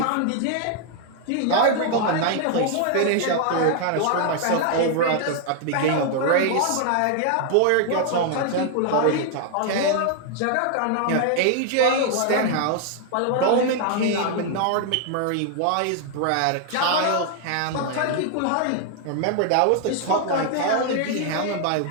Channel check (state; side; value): different; both; correlation 0.00